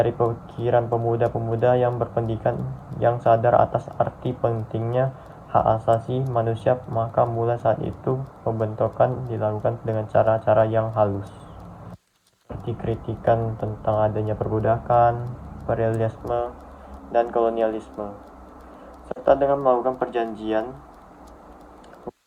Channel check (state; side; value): identical; both; correlation 1.00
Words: pikiran pemuda-pemuda yang berpendidikan yang sadar atas arti pentingnya hak asasi manusia, maka mulai saat itu pembentukan dilakukan dengan cara-cara yang halus, seperti kritikan tentang adanya perbudakan, imperialisme, dan kolonialisme, serta dengan melakukan perjanjian.